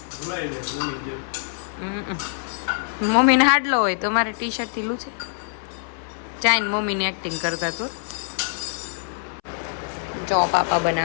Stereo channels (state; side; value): silent; right; 62 dB below the other